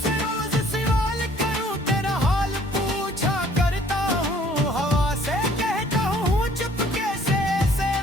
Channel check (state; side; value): normal; both; correlation 0.58